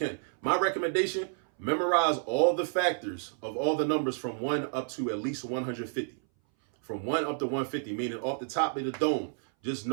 My recommendation, memorize all the factors of all the numbers from 1 up to at least 150. From 1 up to 150, meaning off the top of the dome, just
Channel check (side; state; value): left; silent; 58 dB below the other